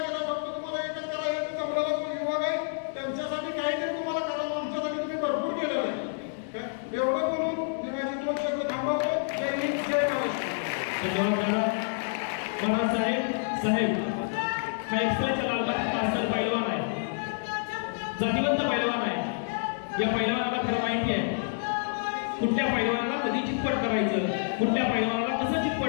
केलं. फक्त तुम्हाला एकच करायचं जमलेला युवक आहे त्यांच्यासाठी काहीतरी तुम्हाला करावं. आमच्यासाठी तुम्ही भरपूर केलेलं आहे. एवढं बोलून मी माझी 2 शब्द थांबवतो. जय हिंद जय महाराष्ट्र. साहेब हा एक्सप्रेसचा लालबाग पार्सल पैलवान आहे, जातीवंत पैलवान आहे. या पैलवानाला खरं माहिती आहे कुठल्या पैलवानाला कधी चितपट करायचं, कुठल्या पैलवानाला कसं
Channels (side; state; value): right; silent; digital silence